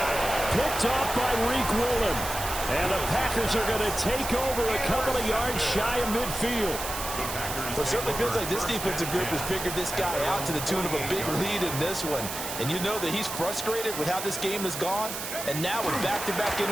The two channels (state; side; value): noise; right; hiss, 6 dB below the sound